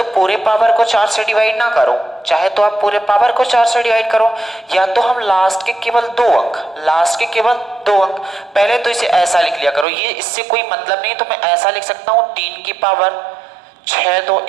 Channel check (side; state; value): left; drops out; at 9.9 s